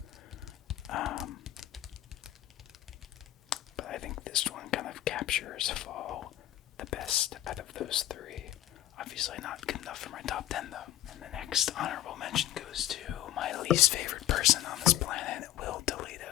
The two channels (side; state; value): right; quieter; 13.6 dB